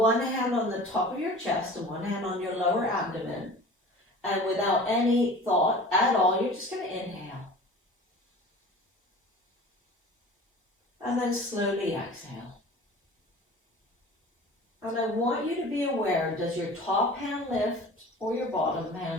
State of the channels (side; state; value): both; normal; correlation 0.40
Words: hand on the top of your chest and one hand on your lower abdomen. And without any thought at all, you're just going to inhale. And then slowly exhale. And I want you to be aware, does your top hand lift or your bottom